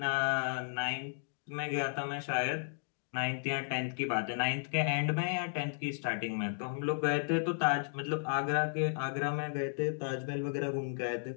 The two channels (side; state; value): right; silent; digital silence